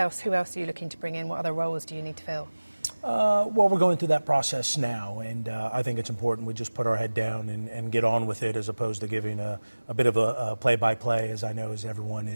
Who else are you looking to bring in? What other roles do you need to fill? Well, we're going through that process now, and I think it's important we just put our head down and get on with it, as opposed to giving a bit of a play-by-play, as I know as everyone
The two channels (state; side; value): inverted; both; correlation -1.00